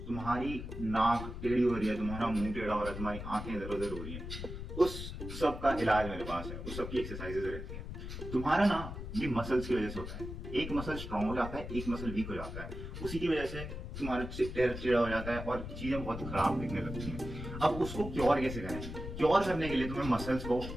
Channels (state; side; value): noise; left; rumble, 8 dB below the sound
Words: तुम्हारी नाक टेढ़ी हो रही है, तुम्हारा मुंह टेढ़ा हो रहा है, तुम्हारी आंखें इधर उधर हो रही हैं, उस सब का इलाज मेरे पास है, उस सब की एक्सरसाइजेज रहती हैं। तुम्हारा ना ये मसल्स की वजह से होता है, एक मसल स्ट्रांग हो जाता है, एक मसल वीक हो जाता है, उसी की वजह से तुम्हारा चेहरा टेढ़ा हो जाता है और चीजें बहुत खराब दिखने लगती हैं। अब उसको क्योर कैसे करें? क्योर करने के लिए तुम्हें मसल्स को